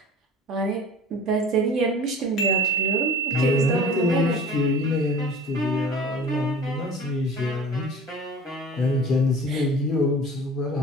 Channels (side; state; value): both; normal; correlation 0.41